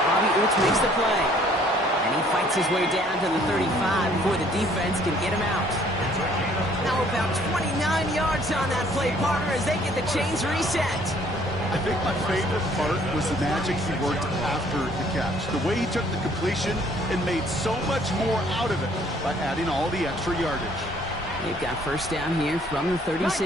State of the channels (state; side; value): normal; both; correlation 0.60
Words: Bobby Oots makes the play. And he fights his way down to the 35 before the defense can get him out. Now about 29 yards on that play, partner, as they get the chains reset. I think my favorite part was the magic he worked after the catch. The way he took the completion and made so much more out of it by adding all the extra yardage. They've got 1st down here from the